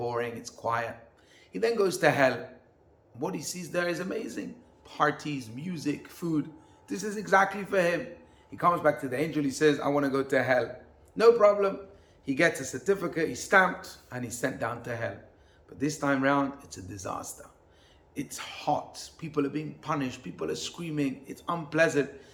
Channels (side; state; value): both; identical; correlation 1.00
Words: It's quiet. He then goes to hell. What he sees there is amazing. Parties, music, food. This is exactly for him. He comes back to the angel. He says, I want to go to hell. No problem. He gets a certificate, he's stamped, and he's sent down to hell. But this time round, it's a disaster. It's hot. People are being punished. People are screaming. It's unpleasant.